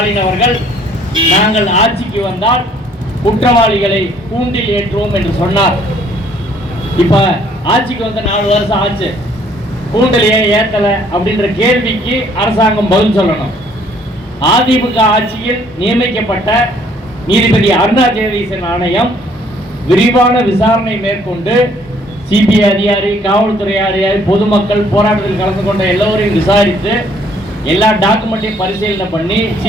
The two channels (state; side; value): normal; both; correlation 0.62